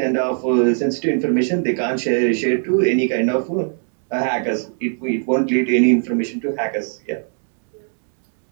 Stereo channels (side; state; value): left; silent; 55 dB below the other